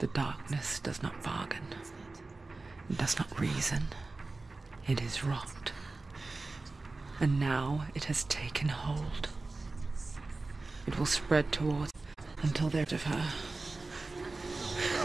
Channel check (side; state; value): left; quieter; 3.4 dB